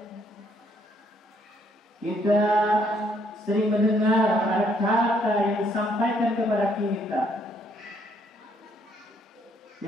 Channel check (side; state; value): both; normal; correlation 0.69